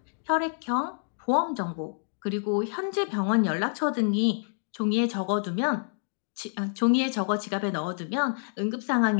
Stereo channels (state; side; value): silent; right; 60 dB below the other